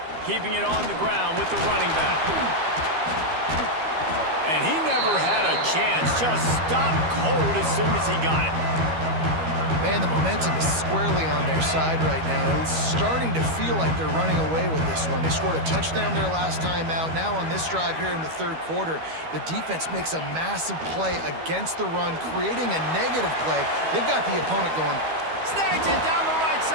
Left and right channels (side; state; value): left; late; 12 ms